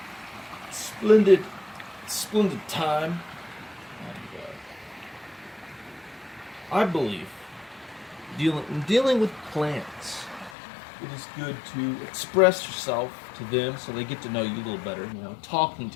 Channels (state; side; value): drops out; right; at 10.6 s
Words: a splendid time. And, I believe dealing with plants, it is good to express yourself to them so they get to know you a little better. You know, talking